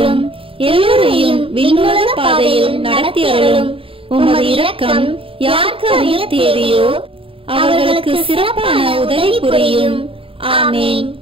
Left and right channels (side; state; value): left; late; 0.26 ms